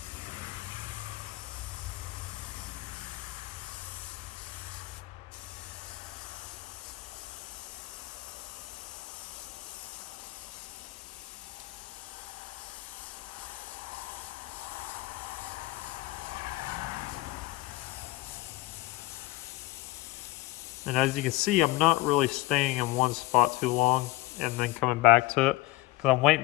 And as you can see, I'm not really staying in one spot too long and then coming back to it, because I'm waiting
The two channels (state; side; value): quieter; right; 18.3 dB